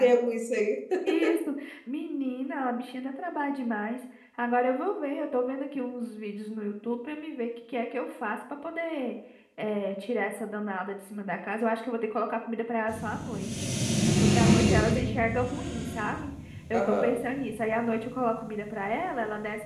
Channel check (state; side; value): identical; both; correlation 1.00